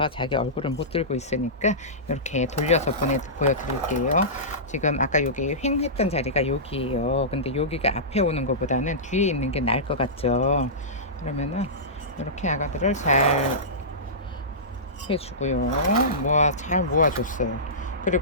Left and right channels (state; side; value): normal; both; correlation -0.18